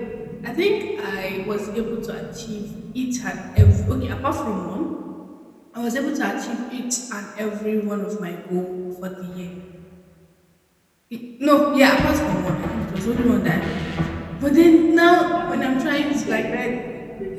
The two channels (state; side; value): identical; both; correlation 1.00